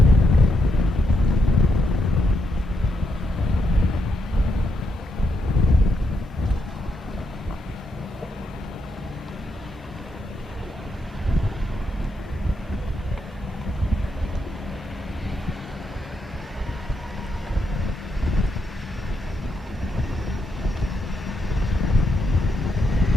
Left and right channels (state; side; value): normal; both; correlation 0.81